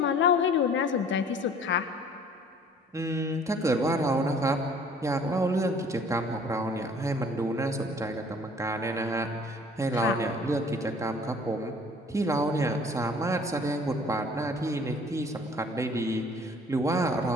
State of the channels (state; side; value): normal; both; correlation 0.52